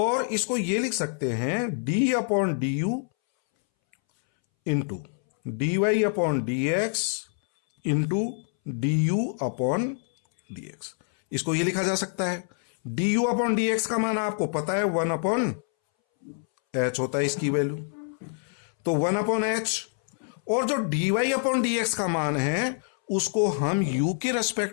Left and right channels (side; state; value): right; silent; 61 dB below the other